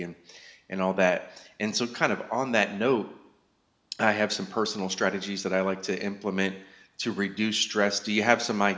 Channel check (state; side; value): identical; both; correlation 1.00